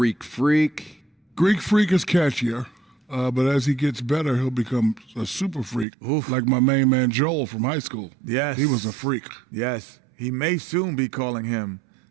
Freak? Greek Freak is catchier, but as he gets better, he'll become a super freak, like my main man Joel from high school. Yes. He was a freak. Yes. He may soon be calling him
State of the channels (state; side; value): drops out; left; at 5.9 s